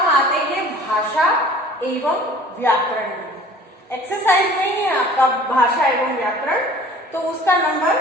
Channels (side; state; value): both; normal; correlation 0.48